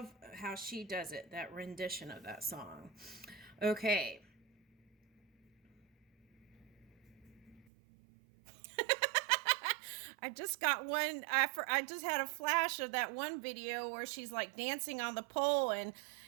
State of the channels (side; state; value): left; drops out; at 7.7 s